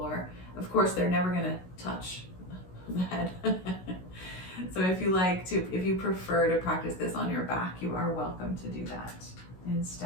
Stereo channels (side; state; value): right; late; 16 ms